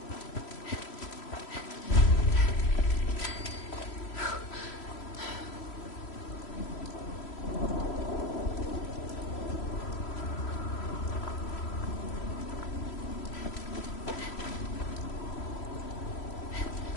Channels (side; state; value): right; late; 3.0 ms